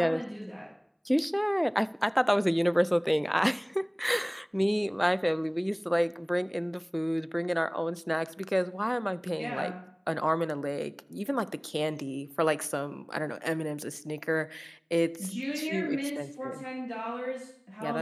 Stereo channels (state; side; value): identical; both; correlation 1.00